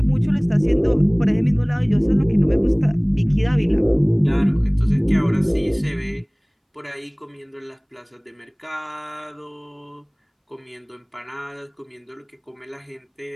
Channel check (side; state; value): both; identical; correlation 1.00